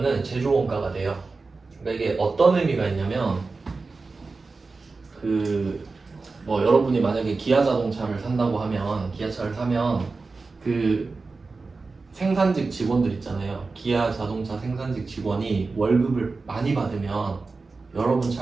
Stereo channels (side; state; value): left; quieter; 4.0 dB